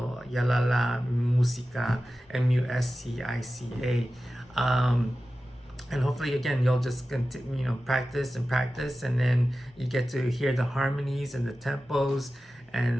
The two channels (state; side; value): normal; both; correlation 0.94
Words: Yalalag Musica, Musica. And hopefully, again, you'll just continue, practice and practice, and then you get to hear the harmonies and the tempos,